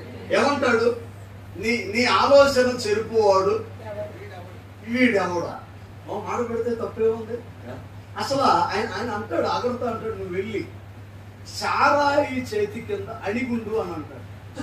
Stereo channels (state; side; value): identical; both; correlation 1.00